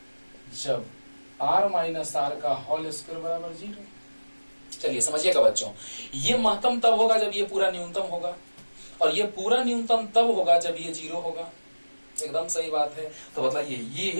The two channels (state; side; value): inverted; both; correlation -1.00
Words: r माइनस आर का होल स्क्वायर बराबर 0। चलिए समझिएगा बच्चों, ये महत्तम तब होगा जब ये पूरा न्यूनतम होगा, और ये पूरा न्यूनतम तब होगा जब ये 0 होगा। एकदम सही बात है। तो